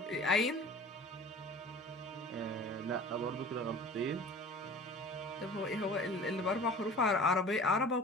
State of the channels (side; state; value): both; normal; correlation 0.42